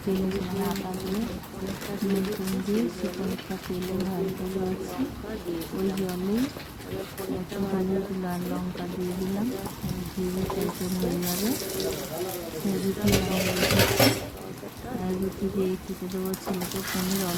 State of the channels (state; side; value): identical; both; correlation 1.00